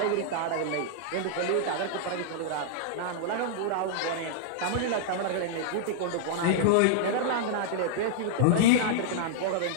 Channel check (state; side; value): different; both; correlation -0.02